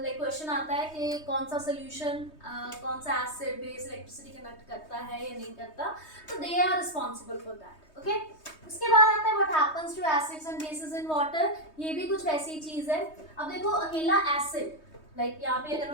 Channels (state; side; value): late; right; 3.2 ms